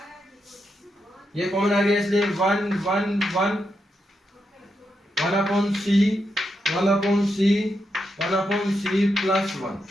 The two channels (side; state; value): both; normal; correlation 0.84